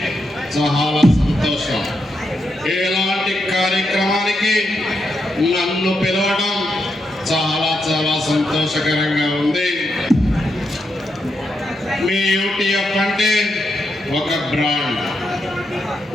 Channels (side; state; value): both; normal; correlation 0.83